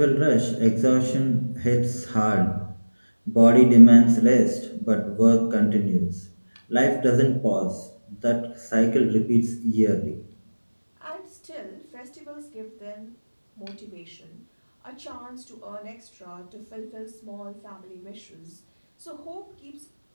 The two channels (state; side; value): inverted; both; correlation -1.00